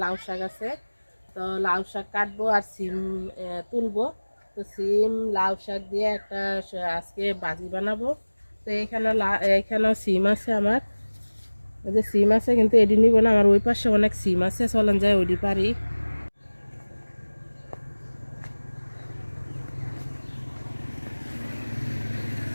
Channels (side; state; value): both; inverted; correlation -1.00